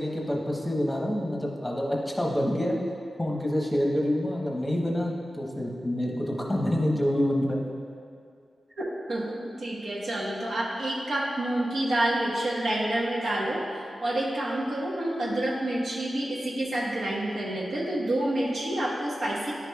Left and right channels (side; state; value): both; normal; correlation 0.94